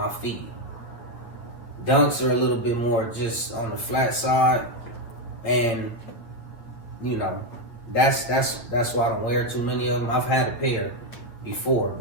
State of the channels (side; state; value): right; late; 8.8 ms